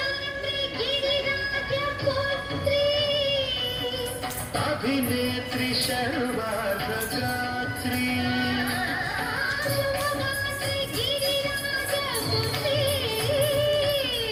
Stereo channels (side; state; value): both; identical; correlation 1.00